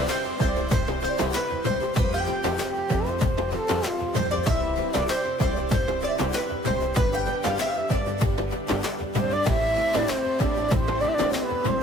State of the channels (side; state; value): both; normal; correlation 0.63